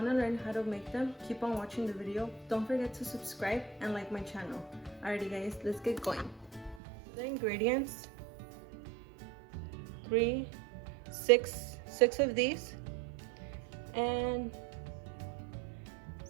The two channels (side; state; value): left; drops out; at 6.8 s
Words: to learn how to make them, keep on watching the video. Don't forget to subscribe and like my channel. Alrighty guys, let's get going. The ingredients: six of these, and